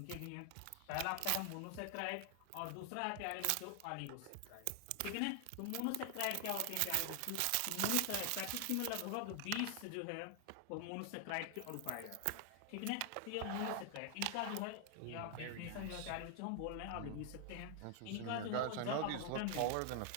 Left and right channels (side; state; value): both; different; correlation 0.00